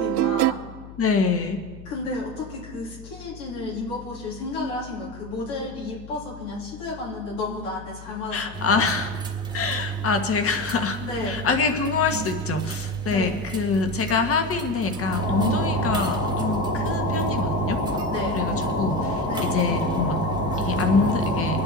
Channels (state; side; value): noise; left; hum, 17 dB below the sound